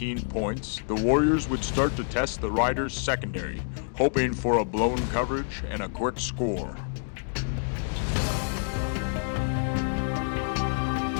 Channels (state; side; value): silent; right; digital silence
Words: points, the Warriors would start to test the Riders' secondary, hoping for a blown coverage and a quick score.